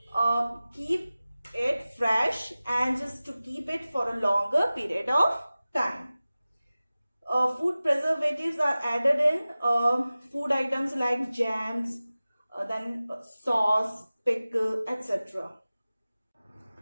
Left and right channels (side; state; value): both; inverted; correlation -0.97